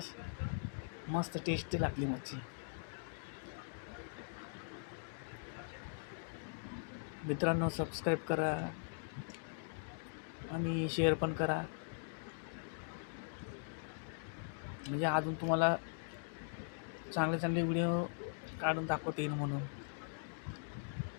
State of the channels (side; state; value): right; silent; digital silence